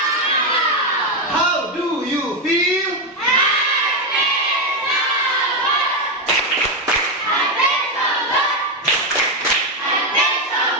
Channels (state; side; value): normal; both; correlation 0.07